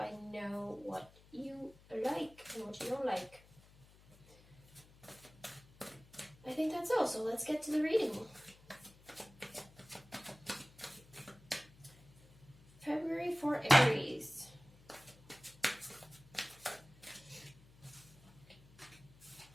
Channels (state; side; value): noise; left; hum, 24 dB below the sound